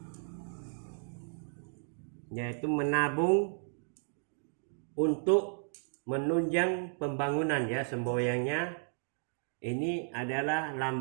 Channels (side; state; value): left; silent; digital silence